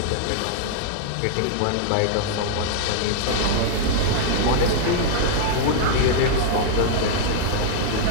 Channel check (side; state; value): both; different; correlation -0.01